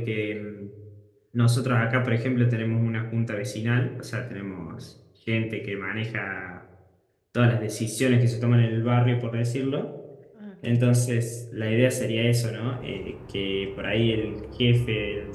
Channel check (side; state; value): both; identical; correlation 1.00